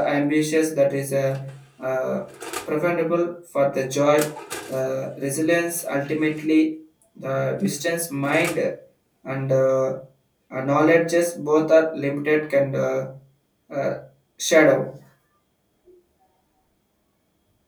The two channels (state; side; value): identical; both; correlation 1.00